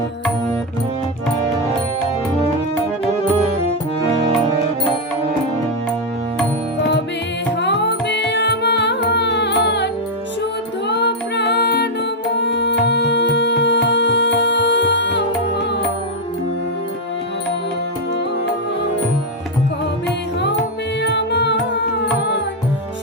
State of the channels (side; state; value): both; normal; correlation 0.01